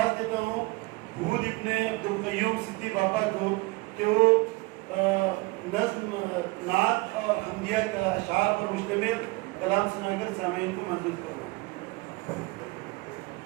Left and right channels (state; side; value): quieter; left; 24.0 dB